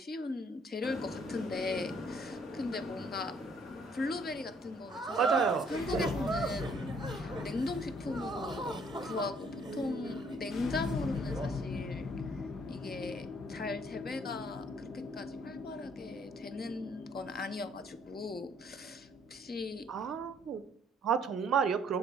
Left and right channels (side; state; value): both; normal; correlation 0.64